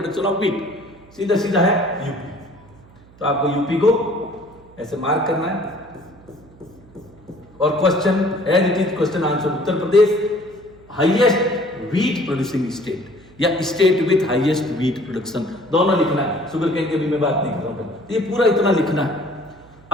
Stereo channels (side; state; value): right; noise; hum, 25 dB below the sound